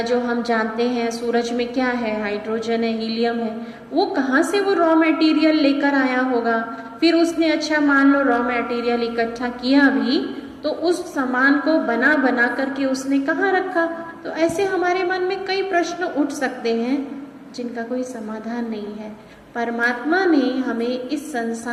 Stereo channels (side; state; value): both; identical; correlation 1.00